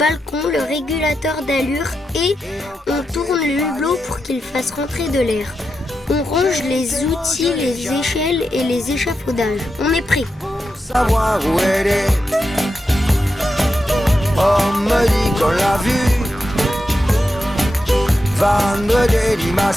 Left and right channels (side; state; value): both; normal; correlation 0.87